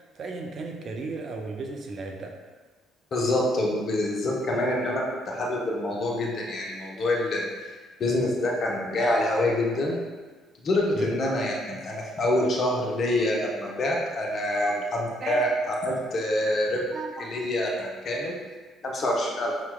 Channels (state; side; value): normal; both; correlation 0.70